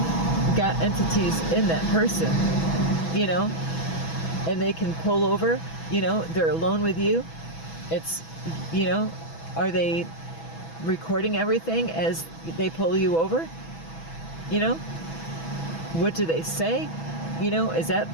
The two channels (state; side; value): late; right; 6.1 ms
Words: got entities in that person, and they can pull over, they're alone with you. It's, are they recording everything as they pull you over? What do they say? Is that